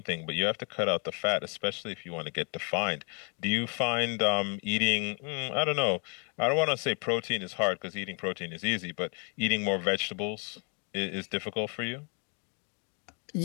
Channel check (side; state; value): right; quieter; 37.7 dB